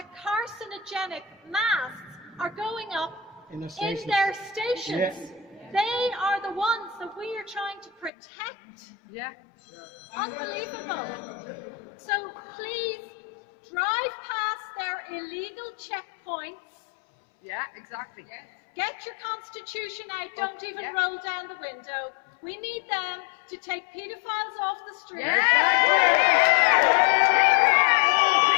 carcinogenic masks are going up in their stations. They are the ones that we are trying to protect. Yeah. Unbelievable. So please drive past their illegal checkpoints. Yeah, exactly. Yes. Get your constitution out. Don't even roll down the window. We need them to take paedophiles off the street. They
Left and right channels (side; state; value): right; drops out; at 8.1 s